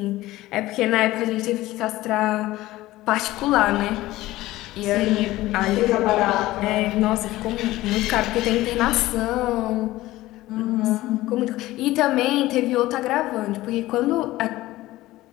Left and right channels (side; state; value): right; quieter; 17.1 dB